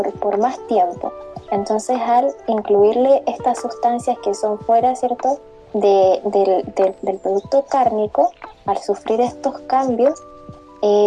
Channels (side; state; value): both; identical; correlation 1.00